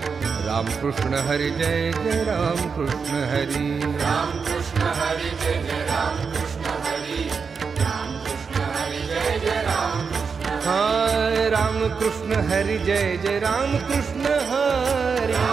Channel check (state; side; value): quieter; left; 5.5 dB